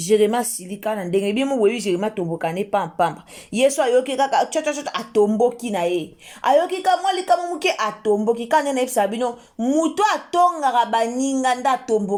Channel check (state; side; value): identical; both; correlation 1.00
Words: silika na ndenge bi mo webi Jérémie tomboka ne pampamba yeso ayoki kaka chota atomboki na ye ayoki ka mwali kama muke atomboki kana na epsa bino muto atonga baninga nda